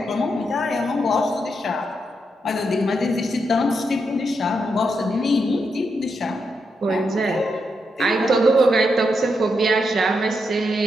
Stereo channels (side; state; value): both; normal; correlation 0.83